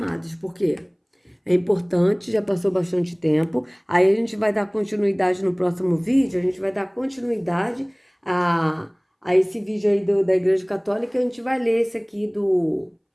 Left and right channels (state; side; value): identical; both; correlation 1.00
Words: Porque É importante, já passou bastante tempo. Aí a gente vai dar continuidade no próximo vídeo, a gente vai dar continuidade a esse vídeo aí da Igreja Católica. A gente vai ler esse aqui